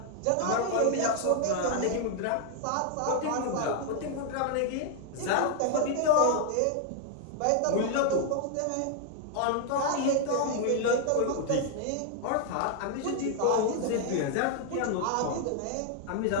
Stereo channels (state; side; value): different; both; correlation 0.00